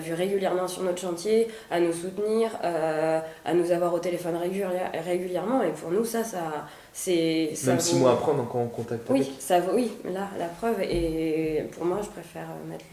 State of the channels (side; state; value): both; identical; correlation 1.00